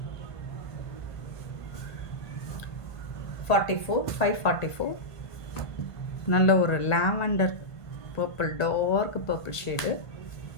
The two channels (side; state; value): right; late; 1.5 ms